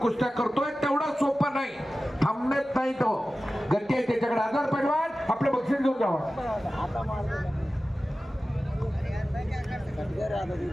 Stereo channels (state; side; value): normal; both; correlation 0.95